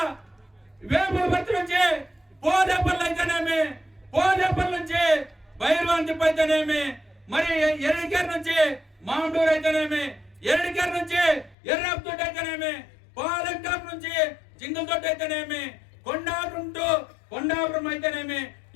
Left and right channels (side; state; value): right; drops out; at 11.6 s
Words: వేములపర్తి నుంచి పోదేపల్లి అయితేనేమి, పోదేపల్లి నుంచి భైరవాంతిప్ప అయితేనేమి, మరి ఎరడికేరు నుంచి మామూలు అయితేనేమి, ఎరడికేరు నుంచి ఎర్రపుతోటి అయితేనేమి, పాలంటాపు నుంచి జింగలతోటి అయితేనేమి, కొండాపురం అయితేనేమి,